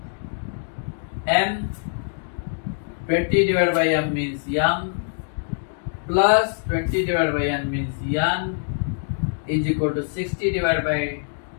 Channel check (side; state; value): right; silent; digital silence